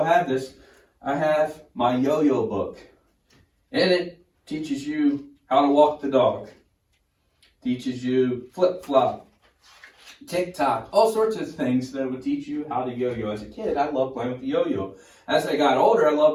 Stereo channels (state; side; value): identical; both; correlation 1.00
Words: have this. I have my yo-yo book. In it teaches you how to walk the dog. Teaches you flip-flop, tick-tock, all sorts of things that would teach you how to yo-yo. As a kid, I loved playing with the yo-yo. As I got older, I